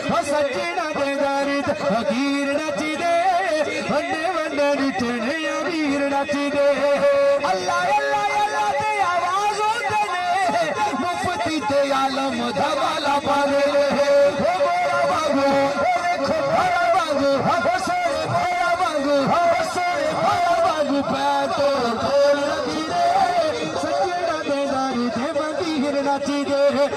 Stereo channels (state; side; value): identical; both; correlation 1.00